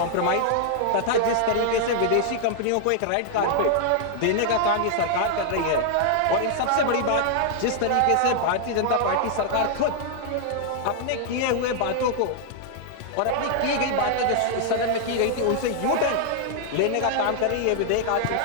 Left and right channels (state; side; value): different; both; correlation 0.00